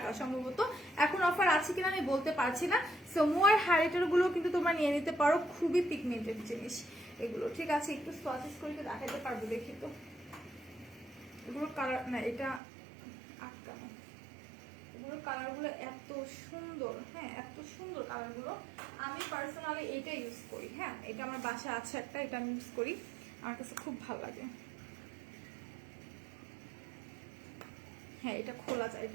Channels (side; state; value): left; drops out; at 12.6 s